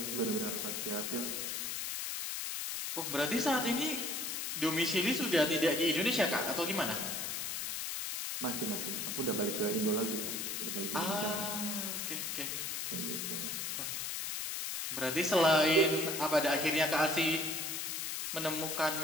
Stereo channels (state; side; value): noise; left; hiss, 3 dB below the sound